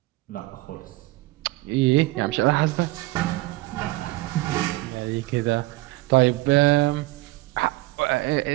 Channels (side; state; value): left; quieter; 20.0 dB